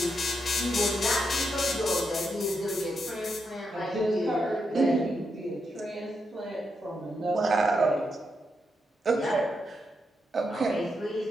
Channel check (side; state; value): both; normal; correlation 0.83